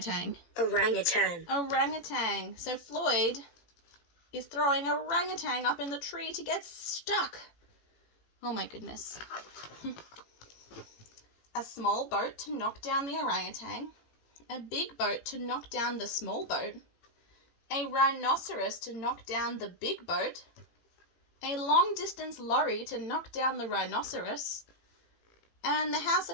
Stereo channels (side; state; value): right; late; 18 ms